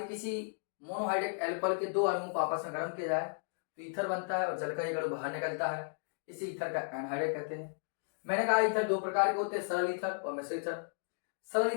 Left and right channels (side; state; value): right; silent; digital silence